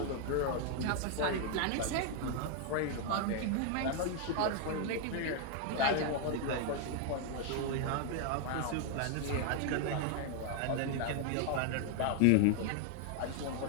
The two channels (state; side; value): different; both; correlation 0.01